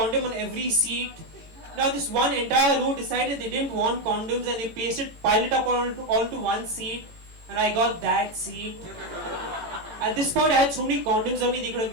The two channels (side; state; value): left; late; 18 ms